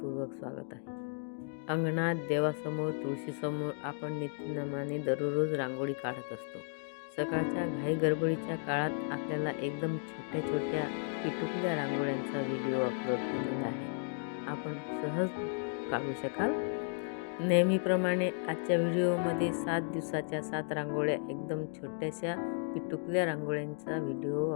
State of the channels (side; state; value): right; silent; 55 dB below the other